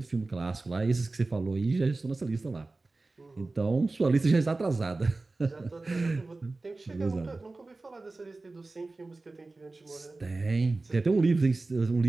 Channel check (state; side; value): quieter; left; 3.3 dB